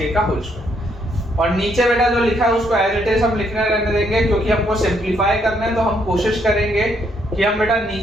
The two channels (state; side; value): normal; both; correlation 0.72